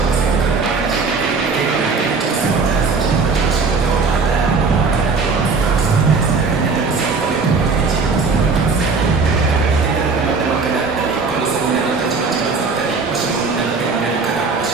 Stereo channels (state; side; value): quieter; left; 4.5 dB